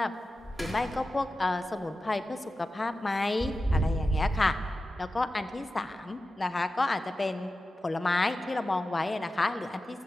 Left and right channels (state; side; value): normal; both; correlation 0.93